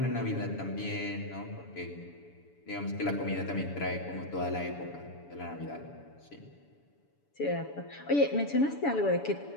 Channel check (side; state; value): right; late; 7.0 ms